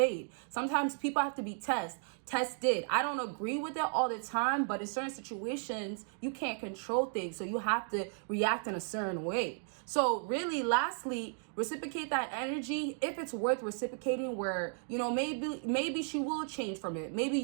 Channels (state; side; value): silent; left; 55 dB below the other